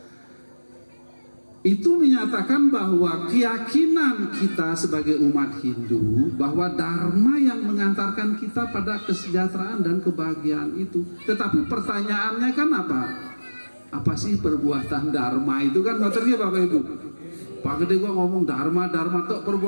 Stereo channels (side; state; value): both; inverted; correlation -1.00